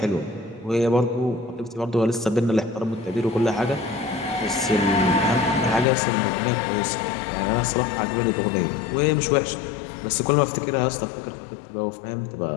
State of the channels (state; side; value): drops out; right; at 5.9 s